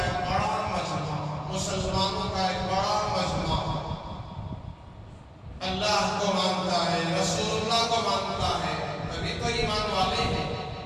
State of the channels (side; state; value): both; identical; correlation 1.00